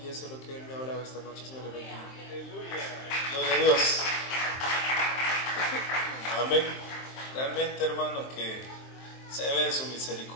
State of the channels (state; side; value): late; right; 23 ms